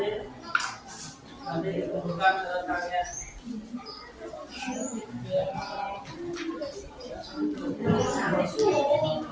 nanti ditentukan kalian.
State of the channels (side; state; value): both; identical; correlation 1.00